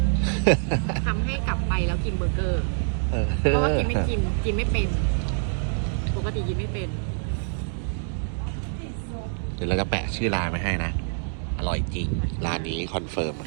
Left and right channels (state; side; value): silent; left; digital silence